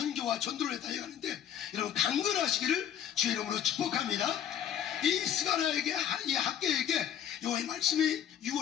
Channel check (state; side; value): quieter; right; 9.6 dB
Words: 전도를 달려가는데 여러분 강건하시기를 주의 이름으로 축복합니다. 이 스가랴에게 이 학계에게 여호와의 말씀이